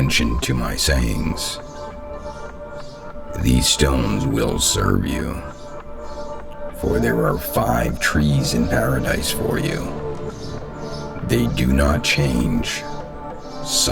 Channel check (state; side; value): identical; both; correlation 1.00